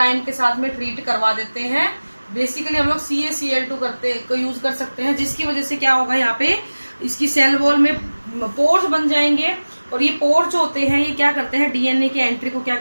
के साथ में ट्रीट करवा देते हैं. बेसिकली हम लोग CaCl2 को यूज कर सकते हैं, जिसकी वजह से क्या होगा, यहाँ पे इसकी सेल वॉल में पोर्स बन जाएंगे. और ये पोर्स जो होते हैं ये क्या करते हैं, डीएनए की एंट्री को क्या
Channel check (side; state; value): both; inverted; correlation -1.00